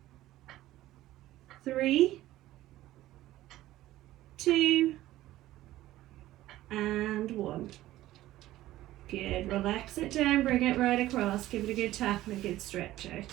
3, 2, and 1. Good. Relax it down, bring it right across, give it a good tap and a good stretch out.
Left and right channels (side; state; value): left; quieter; 15.3 dB